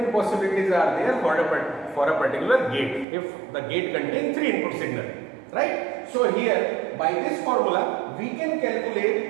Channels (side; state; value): left; drops out; at 3.1 s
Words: possibilities are there for a particular gate, if the gate contains 3 input signal. Right? So here by this formula we can